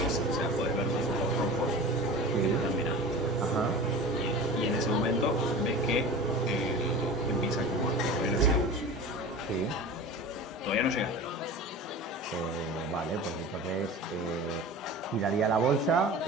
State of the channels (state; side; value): normal; both; correlation 0.34